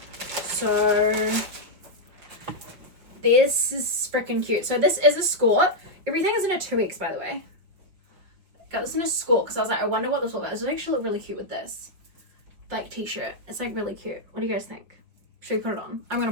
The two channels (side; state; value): left; late; 5.8 ms